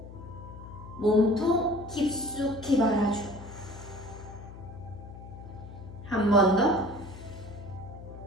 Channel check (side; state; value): left; noise; hum, 14 dB below the sound